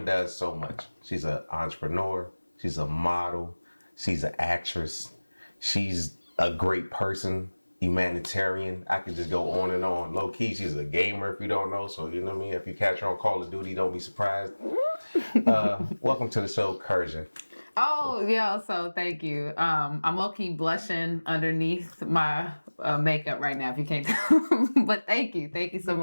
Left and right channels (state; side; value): inverted; both; correlation -1.00